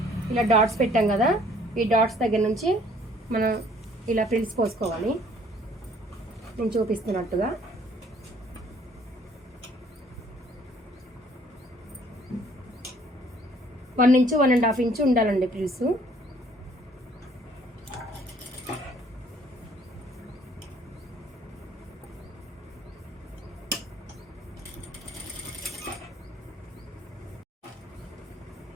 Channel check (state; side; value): normal; both; correlation 0.59